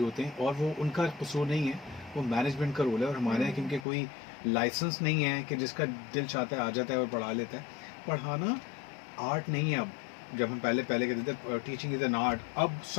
हैं, और वो उनका कसूर नहीं है, वो मैनेजमेंट का रोल है। और हमारे यहाँ क्योंकि कोई लाइसेंस नहीं है कि जिसका दिल चाहता है आ जाता है और पढ़ा लेता है। पढ़ाना आर्ट नहीं है अब। जब हम पहले पहले कहते थे टीचिंग इज एन आर्ट, अब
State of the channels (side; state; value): right; drops out; at 3.9 s